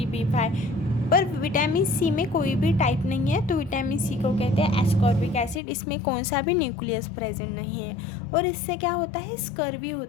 B5, पर विटामिन सी में कोई भी टाइप नहीं है। तो विटामिन सी को कहते हैं एस्कॉर्बिक एसिड। इसमें कौन सा भी न्यूक्लियस प्रेजेंट नहीं है और इससे क्या होता है, स्कर्वी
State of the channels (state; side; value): drops out; right; at 5.6 s